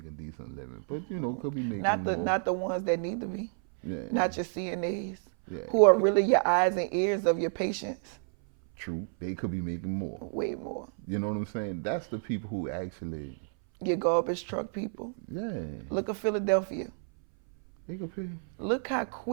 a decent living, but could be making not the ones that need to be. Yeah. Not your CNAs, who are really your eyes and ears of your patients. True, they could be making more. Way more. You know what I'm saying? That's the people who actually. Your garbage truck people. Yeah. Look at Philadelphia. They could pay. Look how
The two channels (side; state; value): left; silent; 58 dB below the other